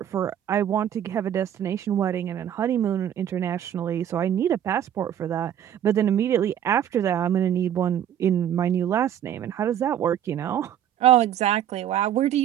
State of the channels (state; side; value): quieter; left; 10.2 dB